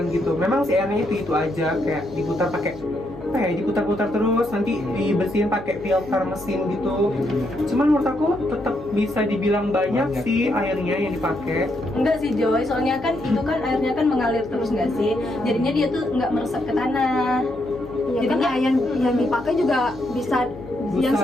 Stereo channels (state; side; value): noise; left; hum, 17 dB below the sound